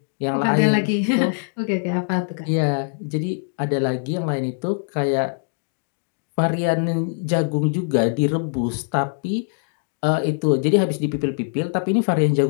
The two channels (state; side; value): silent; right; digital silence